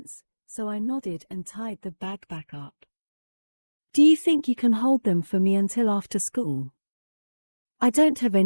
so I nodded and tied the bag back up. Do you think you can hold them for me until after school? I don't have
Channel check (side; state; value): both; inverted; correlation -1.00